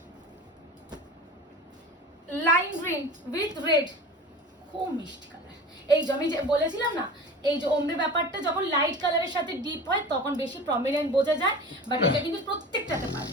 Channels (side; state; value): both; normal; correlation 0.36